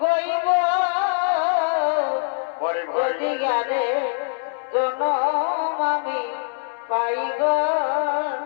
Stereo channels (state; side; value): silent; right; digital silence